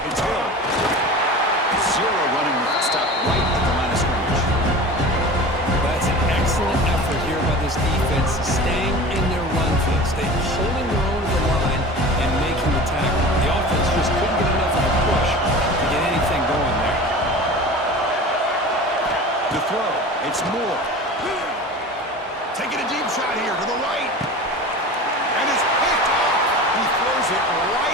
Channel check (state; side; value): normal; both; correlation 0.35